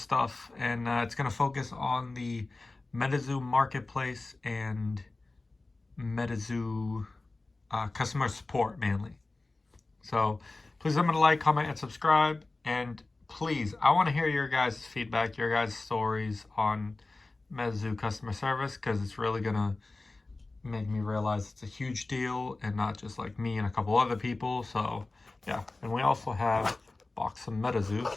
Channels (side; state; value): right; quieter; 3.2 dB